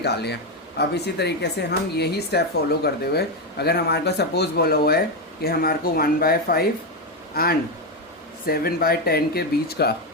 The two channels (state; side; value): normal; both; correlation 0.08